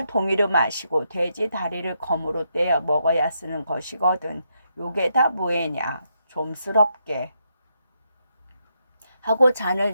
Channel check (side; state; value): both; inverted; correlation -0.80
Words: 동이로 마시고 돼지 다리를 검으로 떼어 먹어야 쓰는 것이거든. 요게 다 뭐애냐? 좀스럽게 하고 잔을